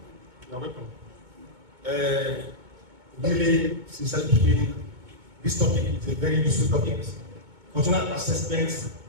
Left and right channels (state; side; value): late; left; 2.2 ms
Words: you are welcome. Really, sincerely speaking, this topic is a very useful topic. Functional assessment,